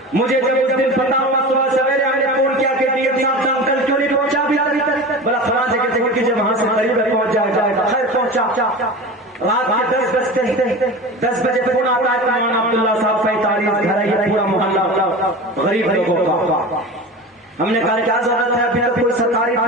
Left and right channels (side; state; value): both; normal; correlation 0.31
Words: مجھے جب اس دن پتا ہوا صبح سویرے ہم نے فون کیا کہ ڈی ایم صاحب انکل کیوں نہیں پہنچا ابھی بلا فلاں جگہ سے کیونکہ جب وہاں سے قریب پہنچ جائے گا. خیر پہنچا. رات کے 10 بجے فون آتا ہے مولانا عبداللہ صاحب 45 گھر ہے پورا محلہ غریب لوگوں کا. ہم نے کہا کیا ضرورت ہے ابھی تک کوئی سرکاری